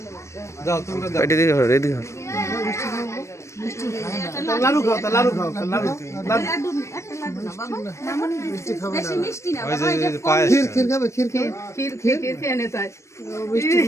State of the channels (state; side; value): late; right; 0.14 ms